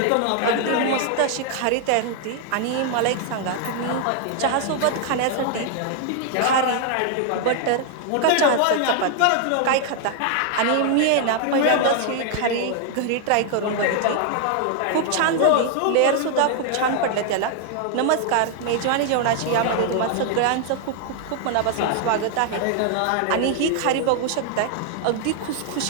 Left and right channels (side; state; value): both; different; correlation 0.00